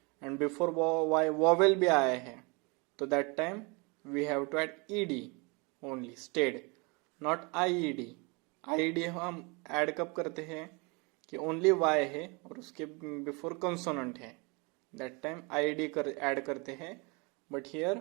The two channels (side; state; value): left; quieter; 29.6 dB